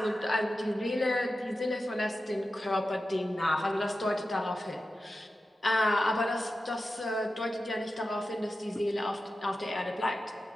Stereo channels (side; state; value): both; normal; correlation 0.92